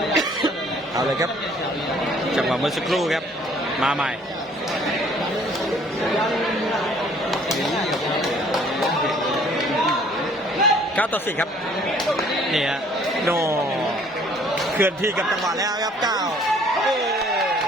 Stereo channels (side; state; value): both; normal; correlation 0.58